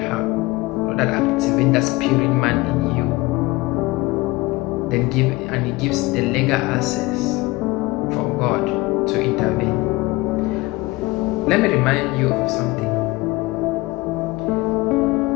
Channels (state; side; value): quieter; right; 21.7 dB